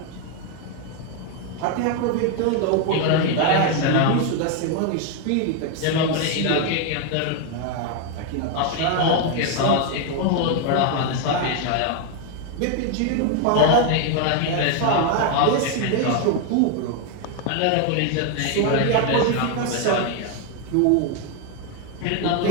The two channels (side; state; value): both; different; correlation 0.01